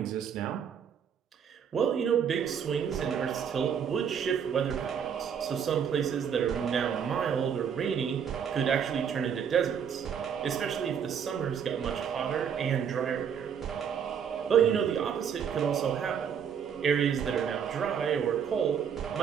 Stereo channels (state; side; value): quieter; left; 7.7 dB